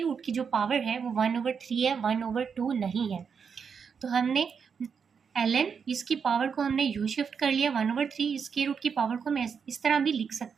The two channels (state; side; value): quieter; left; 6.4 dB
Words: रूट की जो पावर है वो 1/3 है, 1/2 नहीं है। तो हमने एल एन, इसकी पावर को हमने यू शिफ्ट कर लिया, 1/3 स्क्वायर रूट की पावर को हम इस तरह भी लिख